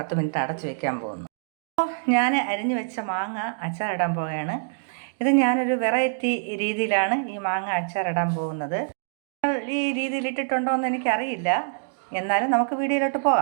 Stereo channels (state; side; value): silent; left; digital silence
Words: മിനിറ്റ് അടച്ചു വെക്കാൻ പോകുന്നു. അപ്പോൾ ഞാൻ അരിഞ്ഞു വെച്ച മാങ്ങ അച്ചാറിടാൻ പോവുകയാണ്. ഇത് ഞാനൊരു വെറൈറ്റി രീതിയിലാണ് ഈ മാങ്ങ അച്ചാറിടാൻ പോകുന്നത്. ഈ രീതിയിൽ ഇട്ടിട്ടുണ്ടോ എന്ന് എനിക്കറിയില്ല, എന്നാലും നമുക്ക് വീഡിയോയിലോട്ട്